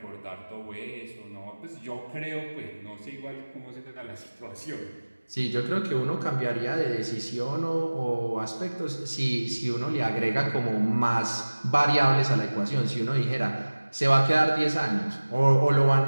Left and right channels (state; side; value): inverted; both; correlation -1.00